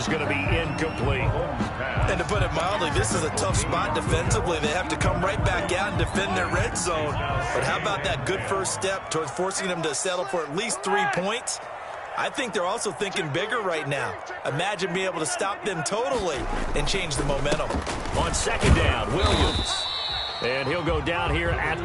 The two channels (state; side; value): identical; both; correlation 1.00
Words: going to be incomplete. And to put it mildly, this is a tough spot defensively. They have to come right back out and defend their red zone. But how about that good first step towards forcing them to settle for at least 3 points? I think they're also thinking bigger right now. Imagine being able to stop them totally and change the momentum. On 2nd down, Williams. And he'll go down here at